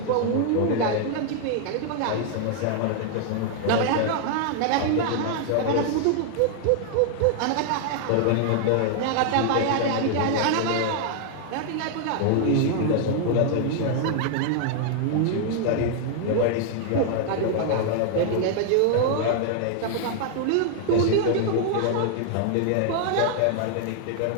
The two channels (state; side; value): different; both; correlation 0.00